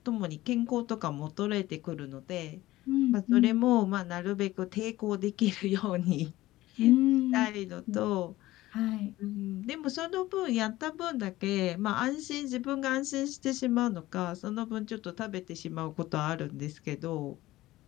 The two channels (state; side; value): quieter; right; 16.9 dB